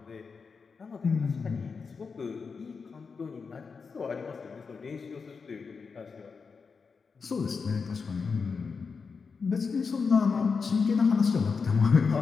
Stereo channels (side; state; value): right; quieter; 5.2 dB